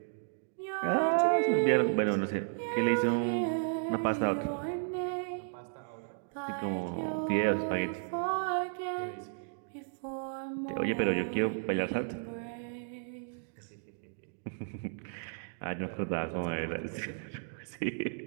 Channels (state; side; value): silent; left; digital silence